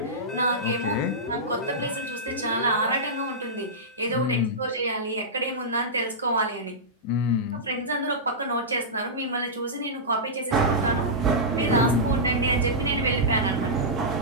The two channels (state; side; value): normal; both; correlation -0.14